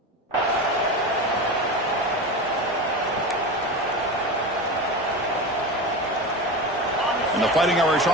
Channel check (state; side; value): normal; both; correlation 0.25